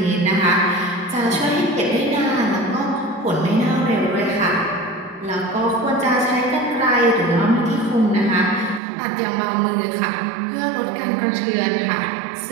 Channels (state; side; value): drops out; left; at 8.8 s